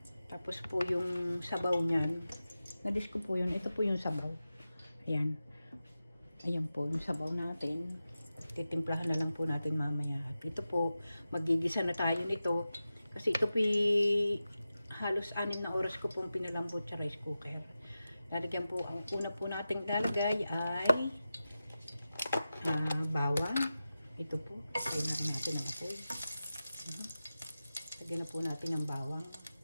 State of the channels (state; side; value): inverted; both; correlation -0.93